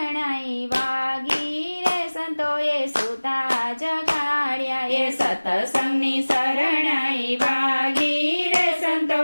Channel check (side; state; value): both; inverted; correlation -1.00